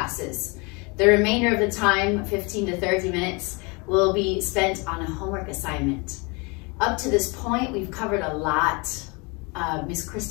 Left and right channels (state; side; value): quieter; right; 29.2 dB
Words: The remainder of the time, 15 to 30 minutes, will be spent on a homework assignment. Up to this point, we've covered a lot. Miss